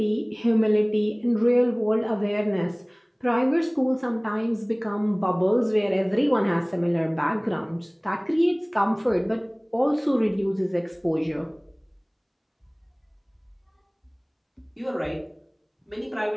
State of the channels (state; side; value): identical; both; correlation 1.00